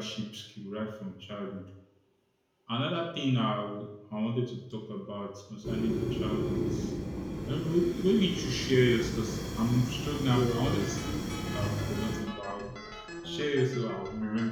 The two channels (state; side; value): identical; both; correlation 1.00